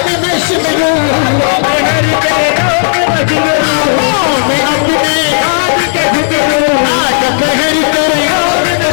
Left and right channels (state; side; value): silent; right; digital silence